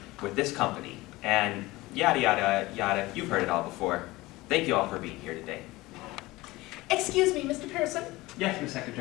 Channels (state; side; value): quieter; right; 19.9 dB